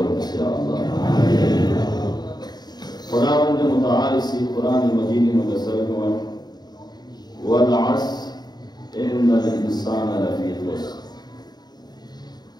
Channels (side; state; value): right; late; 0.20 ms